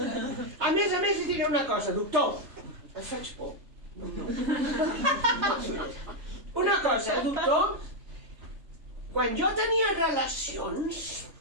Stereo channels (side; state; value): left; late; 3.4 ms